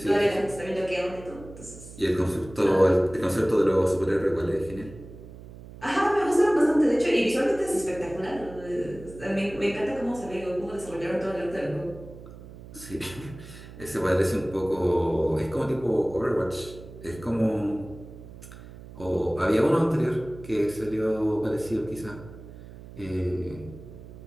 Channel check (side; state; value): right; noise; hum, 16 dB below the sound